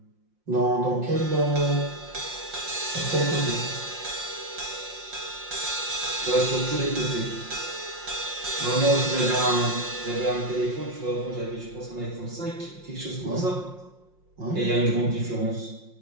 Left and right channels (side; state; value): left; late; 5.6 ms